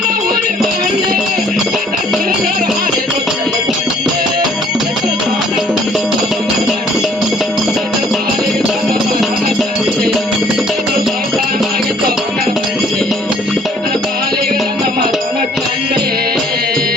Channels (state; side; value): normal; both; correlation 0.59